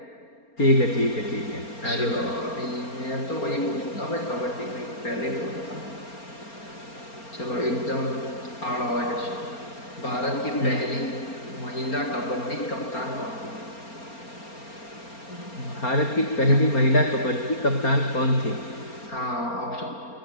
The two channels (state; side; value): late; right; 4.3 ms